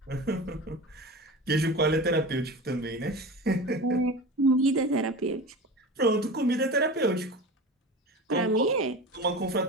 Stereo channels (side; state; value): both; normal; correlation 0.31